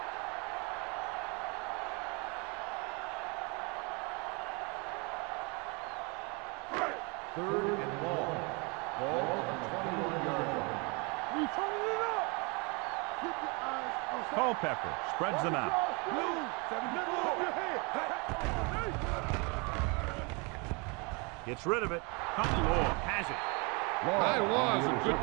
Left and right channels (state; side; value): quieter; left; 30.9 dB